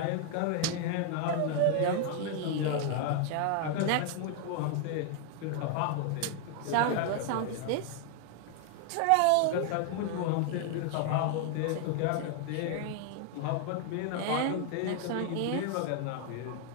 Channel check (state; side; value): different; both; correlation 0.00